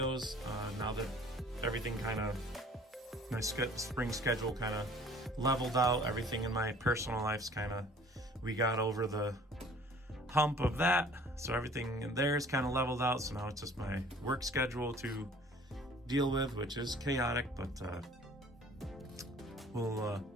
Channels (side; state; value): both; normal; correlation 0.51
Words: now that everything kind of, my spring schedule kind of leveled out. Everything in my personal life's kind of, we got over the hump of that, so everything in there is kind of leveled out. So now it's just my work schedule to deal with, which is chaotic, but